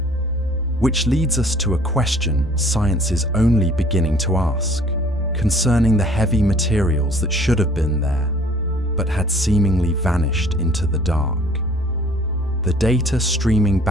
Which leads us to a question science is only beginning to ask, concerning the heavy materials that should have been there, but had seemingly vanished into the dark. The data streaming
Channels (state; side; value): normal; both; correlation 0.54